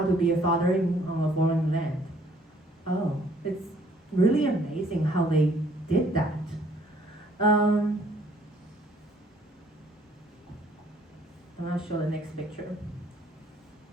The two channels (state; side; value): normal; both; correlation 0.61